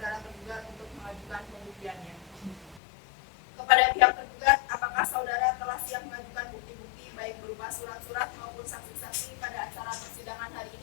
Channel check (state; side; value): drops out; right; at 2.8 s